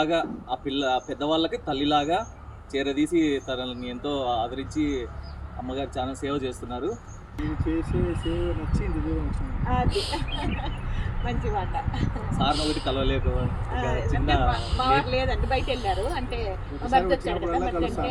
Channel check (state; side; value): identical; both; correlation 1.00